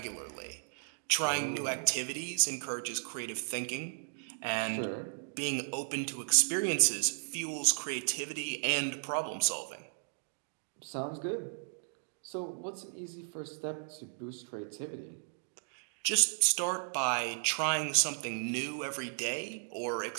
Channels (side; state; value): left; silent; digital silence